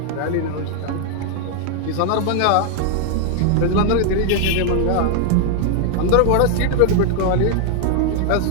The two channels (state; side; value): different; both; correlation 0.00